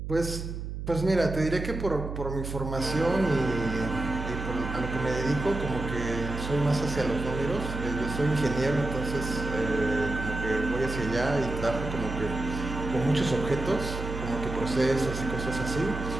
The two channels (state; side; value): noise; right; hum, 6 dB below the sound